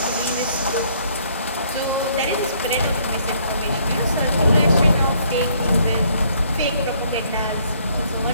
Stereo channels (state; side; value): inverted; both; correlation -0.65